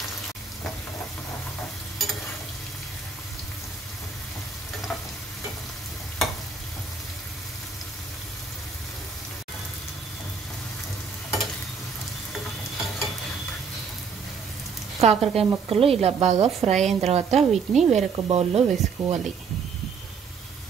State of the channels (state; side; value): quieter; left; 5.6 dB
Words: కాకరకాయ ముక్కలు ఇలా బాగా ఫ్రై అయిన తర్వాత వీటిని వేరొక బౌల్లో వేసుకోవాలి.